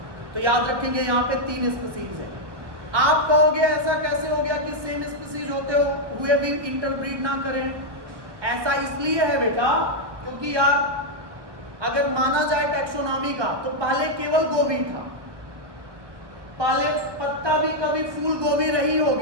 तो याद रखेंगे यहाँ पे 3 स्पीसीज है। आप कहोगे ऐसा कैसे हो गया कि सेम स्पीसीज होते हुए भी इंटरब्रीड ना करें? ऐसा इसलिए है बेटा क्योंकि यार अगर माना जाए टैक्सोनॉमी का तो पहले केवल गोभी था, पहले पत्ता भी कभी फूल गोभी रही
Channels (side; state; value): left; late; 1.0 ms